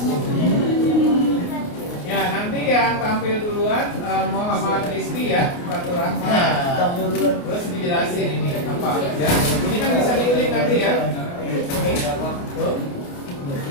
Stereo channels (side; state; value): right; late; 29 ms